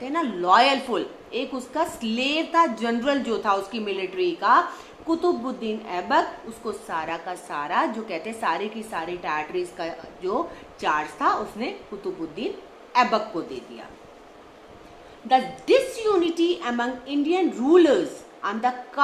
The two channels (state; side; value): identical; both; correlation 1.00